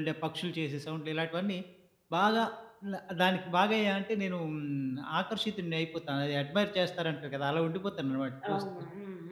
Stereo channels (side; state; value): both; identical; correlation 1.00